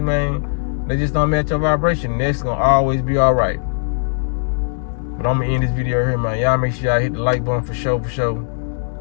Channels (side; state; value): right; silent; digital silence